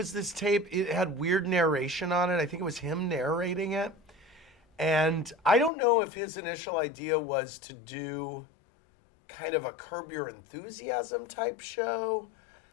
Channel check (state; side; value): drops out; right; at 5.7 s